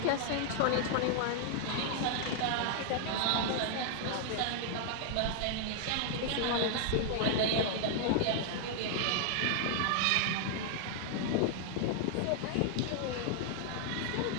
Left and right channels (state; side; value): different; both; correlation 0.00